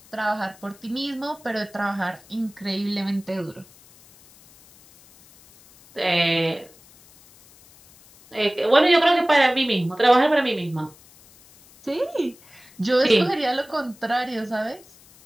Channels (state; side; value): noise; left; hiss, 26 dB below the sound